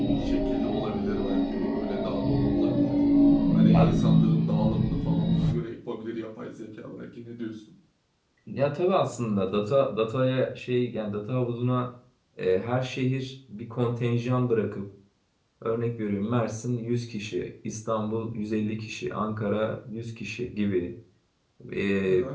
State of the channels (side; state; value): both; identical; correlation 1.00